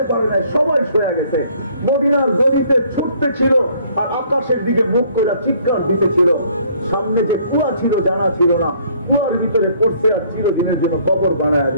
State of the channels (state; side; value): inverted; both; correlation -0.61